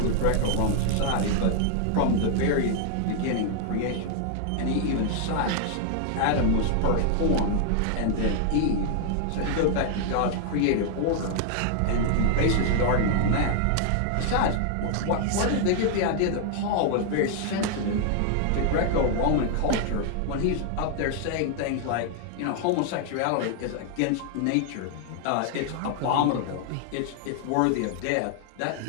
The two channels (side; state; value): both; different; correlation 0.00